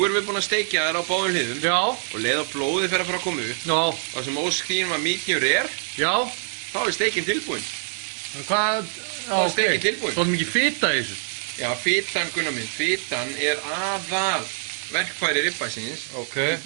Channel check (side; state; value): left; silent; digital silence